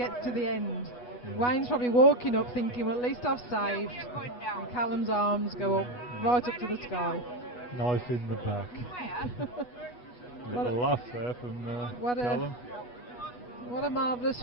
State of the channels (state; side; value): late; right; 8.2 ms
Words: to the end, Wayne's probably walking up thinking, well, at least I've saved. And Callum's arms go up, right up to the sky. Knife in the back. Little laugh there from Callum. What a marvellous